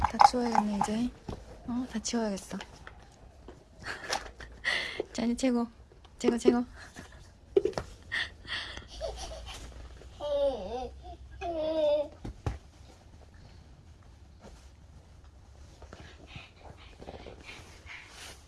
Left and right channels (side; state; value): both; identical; correlation 1.00